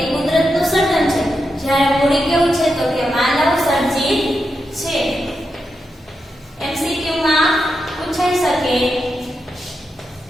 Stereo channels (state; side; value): normal; both; correlation 0.87